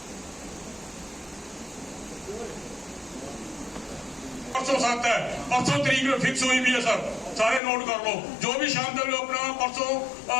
परसों 7 है, परसों तरीक फिक्स हुई भी है सर, सारे नोट कर लो। जो भी शाम तक अपना परसों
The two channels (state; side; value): drops out; right; at 7.6 s